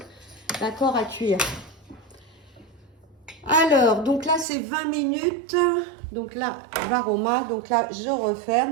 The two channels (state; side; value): drops out; left; at 4.5 s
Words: D'accord, à cuire. Alors, donc là, c'est 20 minutes. Donc là, varoma. Donc là, je